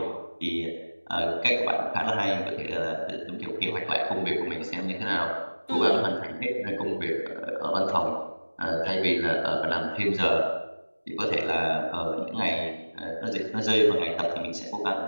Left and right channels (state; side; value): inverted; both; correlation -1.00